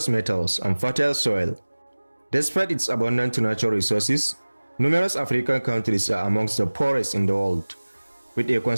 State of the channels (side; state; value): both; inverted; correlation -1.00